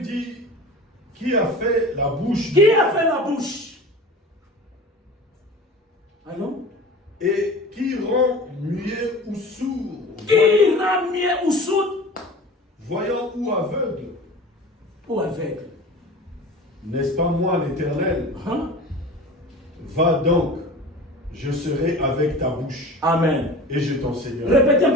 dit, qui a fait la bouche? Qui a fait la bouche? Allons? Et qui rend muet ou sourd? Qui rend muet ou sourd? Voyant ou aveugle? Ou aveugle? N'est-ce pas moi l'Éternel? Hein? Va donc, je serai avec ta bouche. Amen. Et je t'enseignerai. Répétez un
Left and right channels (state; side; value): normal; both; correlation 0.37